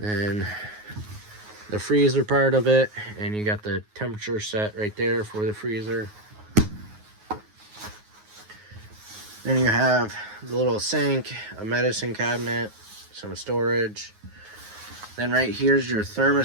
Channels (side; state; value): left; late; 9.5 ms